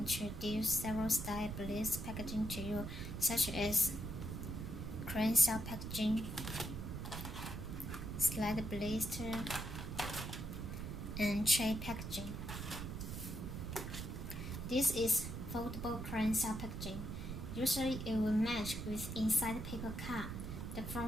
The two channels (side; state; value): right; noise; rumble, 6 dB below the sound